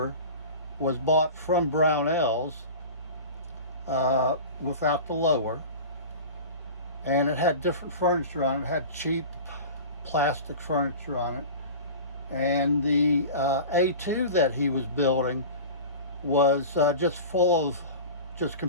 was bought from Brownell's without the lower. And it had different furniture on it. It had cheap plastic furniture on it. And the A2 that he was building was just full of just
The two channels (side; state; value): both; inverted; correlation -0.34